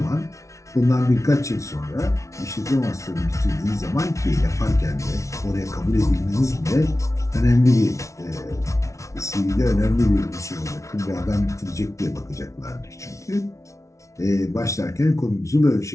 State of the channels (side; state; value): right; late; 0.14 ms